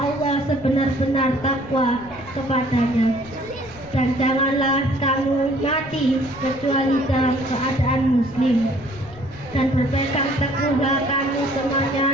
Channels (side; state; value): left; noise; rumble, 19 dB below the sound